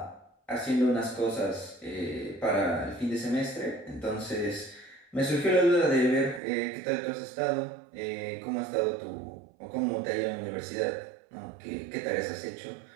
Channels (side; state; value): left; drops out; at 6.4 s